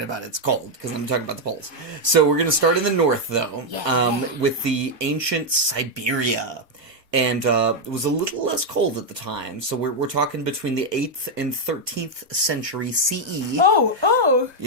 about it's cold, because I'm talking about the poles. So we're going to start in the north, though, with the ancient Siberia. And it was a little less cold at the time. So we're talking between the 8th and 13th century CE. Oh.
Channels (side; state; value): left; late; 1.3 ms